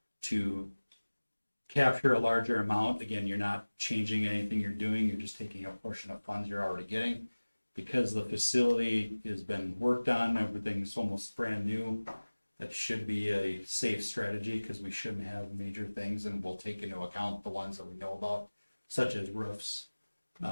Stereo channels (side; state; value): both; inverted; correlation -1.00